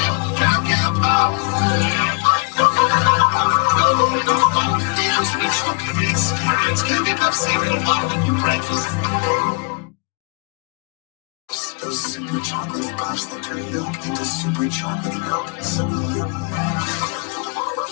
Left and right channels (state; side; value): quieter; right; 33.1 dB